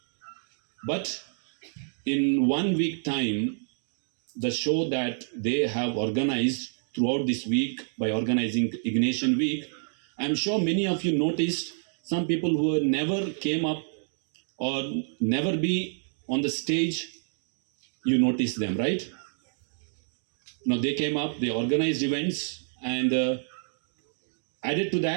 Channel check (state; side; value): silent; left; digital silence